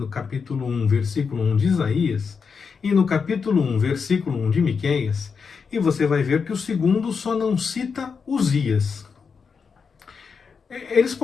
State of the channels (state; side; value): quieter; right; 5.7 dB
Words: capítulo 1, versículo 1 de Isaías e no capítulo 1, versículo 1 de Miqueias, e você vai ver que o segundo só não cita Uzias. Eles